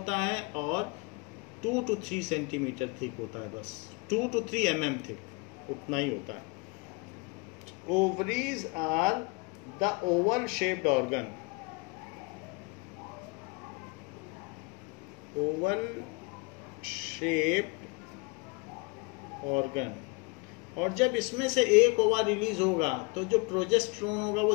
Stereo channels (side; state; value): right; quieter; 29.3 dB